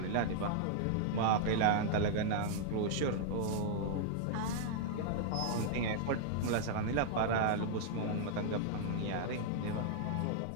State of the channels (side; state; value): both; different; correlation -0.01